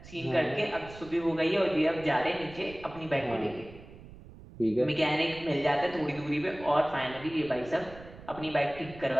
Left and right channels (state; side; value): noise; right; rumble, 18 dB below the sound